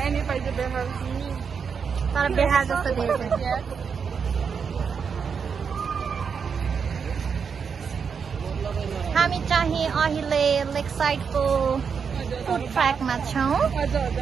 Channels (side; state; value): left; quieter; 6.3 dB